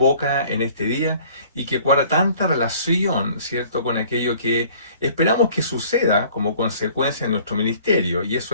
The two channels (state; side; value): inverted; both; correlation -0.53